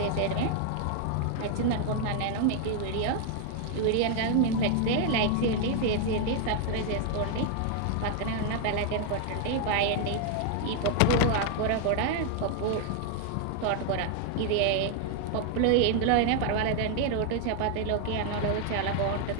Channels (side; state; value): both; different; correlation 0.00